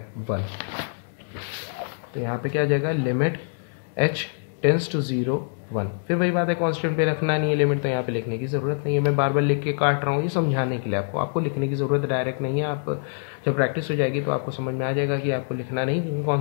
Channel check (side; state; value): right; silent; digital silence